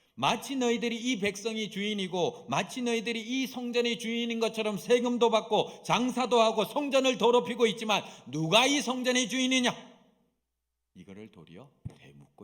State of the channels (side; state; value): both; identical; correlation 1.00